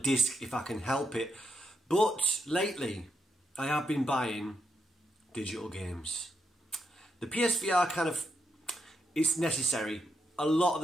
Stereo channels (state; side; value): normal; both; correlation 0.81